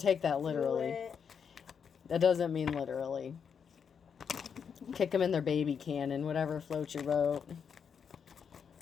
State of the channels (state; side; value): quieter; right; 6.9 dB